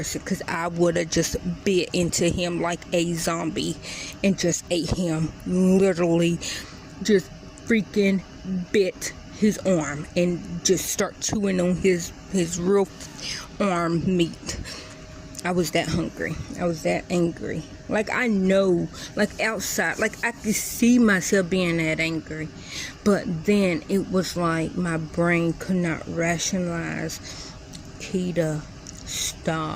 because I would have just bit into him like a zombie and just ate him. Literally just freaking bit his arm and just start chewing on his real arm meat. I was that hungry. I was that angry. Like, I know, like, outside, like, I could see myself being that angry. But then it was like my brain could not rationalize, Keita,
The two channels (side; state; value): both; identical; correlation 1.00